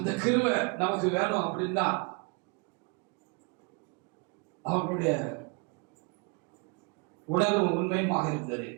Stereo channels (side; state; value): left; quieter; 32.0 dB